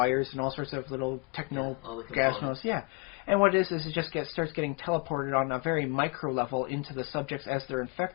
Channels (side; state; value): right; quieter; 29.7 dB